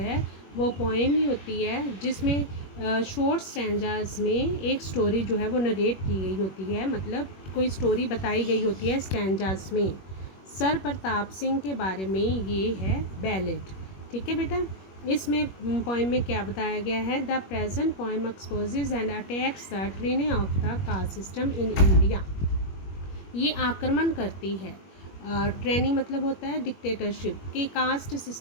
वो पोएम ही होती है जिसमें शॉर्ट स्टैंजास में एक स्टोरी जो है वो नरेट की गई होती है, मतलब कोई स्टोरी बताई गई होती है स्टैंजास में। सर प्रताप सिंह के बारे में ये है बैलेड। ठीक है बेटा। इसमें पोएम में क्या बताया गया है, the present poem exposes and attacks the training of the caste system in India. ये आक्रमण करती है, ट्रेनिंग मतलब होता है डिक्टेटरशिप, कि कास्ट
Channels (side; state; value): right; late; 21 ms